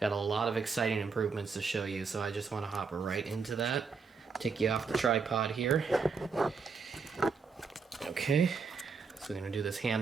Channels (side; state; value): left; quieter; 5.1 dB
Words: a lot of exciting improvements to show you, so I just want to hop right into that. Take you off the tripod here. Okay, so we're going to do this